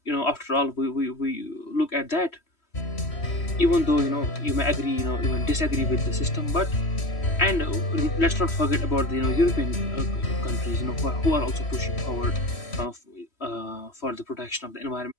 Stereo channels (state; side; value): late; right; 3.1 ms